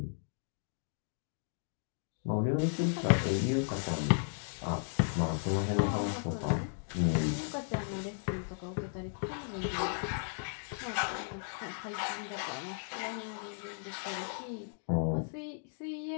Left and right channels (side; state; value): right; silent; digital silence